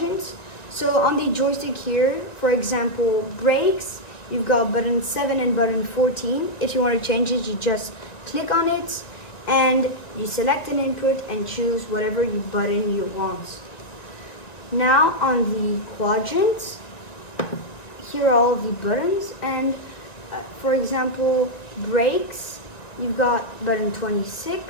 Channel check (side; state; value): right; late; 1.9 ms